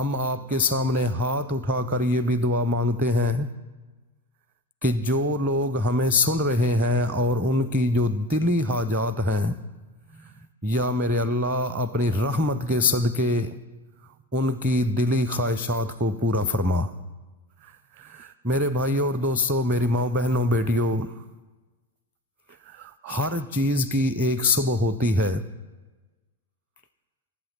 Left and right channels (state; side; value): normal; both; correlation 0.36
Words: آپ کے سامنے ہاتھ اٹھا کر یہ بھی دعا مانگتے ہیں کہ جو لوگ ہمیں سن رہے ہیں اور ان کی جو دلی حاجات ہیں، یا میرے اللہ اپنی رحمت کے صدقے ان کی دلی خواہشات کو پورا فرما۔ میرے بھائیوں اور دوستوں، میری ماؤں بہنوں بیٹیوں، ہر چیز کی ایک صبح ہوتی ہے۔